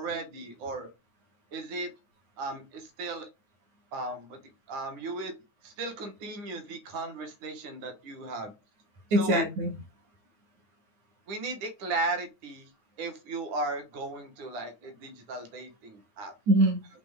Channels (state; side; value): late; left; 9.4 ms